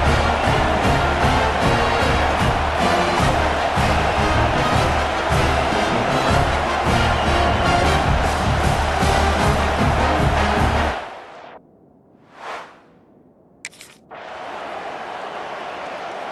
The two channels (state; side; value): identical; both; correlation 1.00